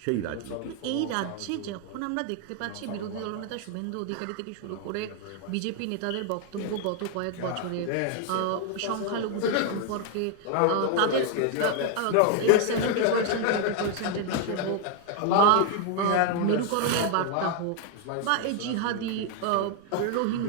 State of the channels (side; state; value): both; different; correlation 0.01